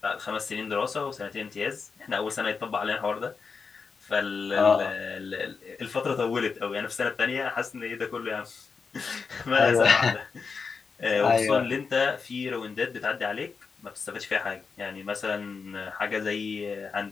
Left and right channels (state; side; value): quieter; right; 5.2 dB